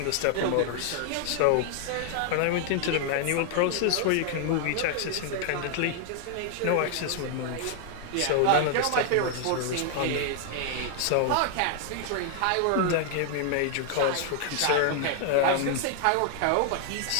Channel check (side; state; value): both; different; correlation 0.00